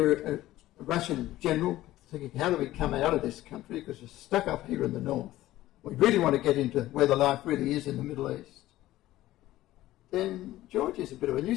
a Russian general thinking, how do we come out of this country because we're stuck up here in the north, we really want to get into where the life really is in the Middle East, then Georgia is a bit of a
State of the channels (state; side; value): quieter; right; 15.6 dB